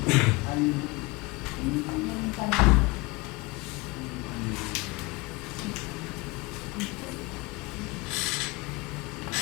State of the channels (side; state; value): right; quieter; 24.2 dB